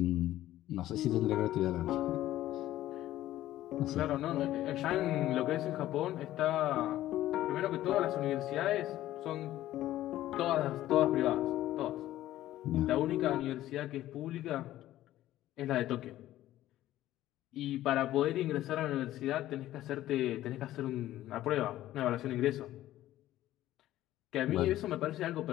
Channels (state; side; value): quieter; right; 14.2 dB